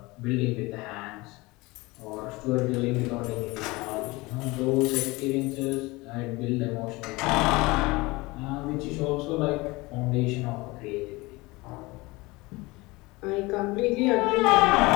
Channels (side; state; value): right; quieter; 22.7 dB